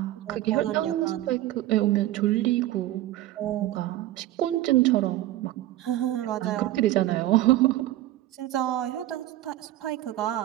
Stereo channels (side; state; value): left; quieter; 14.9 dB